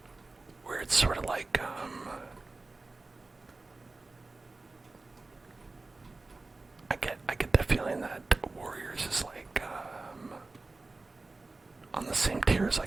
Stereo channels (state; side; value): quieter; left; 3.4 dB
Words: Where it's sort of like, I get the feeling that Warriors is like, on the same tier as